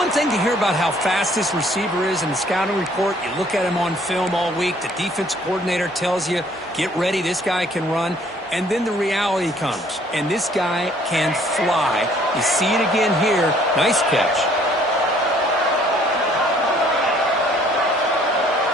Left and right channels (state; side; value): normal; both; correlation 0.60